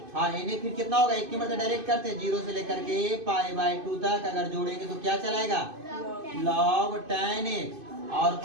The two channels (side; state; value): left; late; 2.5 ms